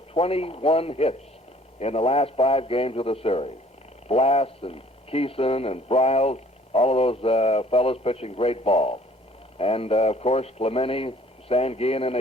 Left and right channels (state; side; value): normal; both; correlation 0.56